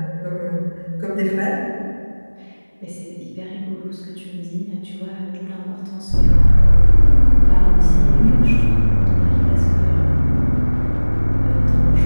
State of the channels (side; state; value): both; inverted; correlation -1.00